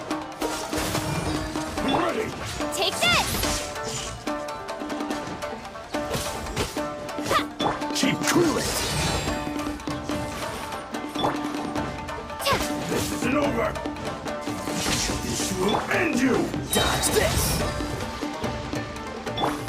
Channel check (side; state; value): both; identical; correlation 1.00